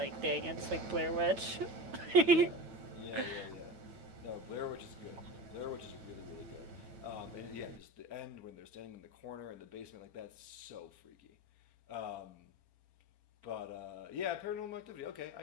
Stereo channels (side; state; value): left; late; 9.0 ms